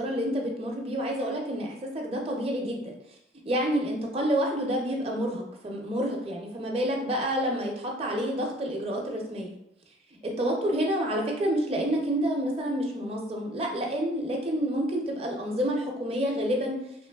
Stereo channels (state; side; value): normal; both; correlation 0.54